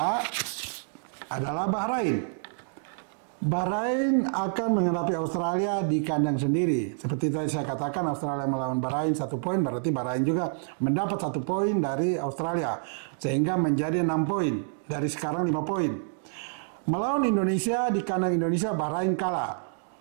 adalah Bahrain. Bahrain akan menghadapi Australia di kandang sendiri. Seperti tadi saya katakan, Australia melawan Bahrain 1 poin, berarti Bahrain juga mendapat 1 poin dari Australia. Sehingga menjadi 6 poin, dari sekarang 5 poin. Melawan Indonesia di kandang Indonesia, Bahrain kalah.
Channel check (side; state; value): left; silent; digital silence